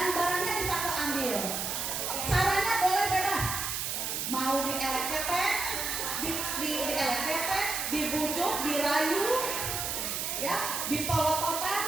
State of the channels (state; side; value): noise; right; hiss, 2 dB below the sound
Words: barangnya bisa keambil. Caranya boleh bebas. Mau dielek-ketek, dielek-ketek, dibujuk, dirayu, ya,